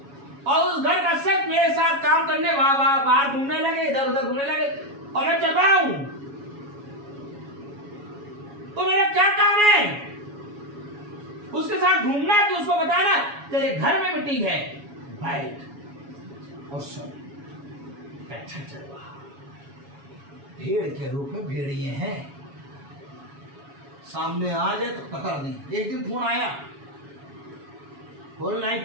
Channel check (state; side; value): late; left; 7.2 ms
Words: और उस घर का शख्स मेरे साथ काम करने बाहर घूमने लगे, इधर उधर घूमने लगे और मैं चल रहा हूं, तो मेरा क्या काम है? उसके साथ घूमना है कि उसको बताना तेरे घर में मीटिंग है, बैठ और सुन। अच्छा चल रहा भेड़ के रूप में भेड़िए हैं, सामने आ जाए तो कतर दें। एक दिन फोन आया, होल